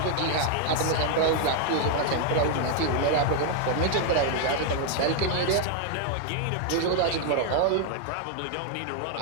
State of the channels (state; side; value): different; both; correlation 0.00